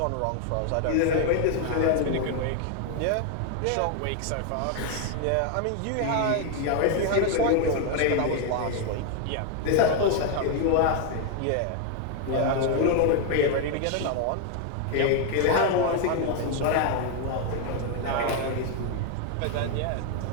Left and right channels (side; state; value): both; different; correlation 0.00